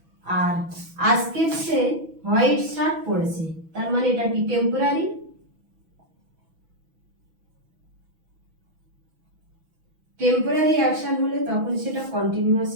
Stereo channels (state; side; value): late; left; 6.1 ms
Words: আর আজকের সে হোয়াইট শার্ট পরেছে, তার মানে এটা কি টেম্পোরারি? টেম্পোরারি অ্যাকশন হলে তখন সেটা